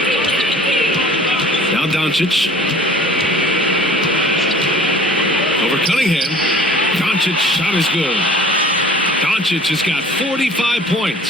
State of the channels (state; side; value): normal; both; correlation 0.48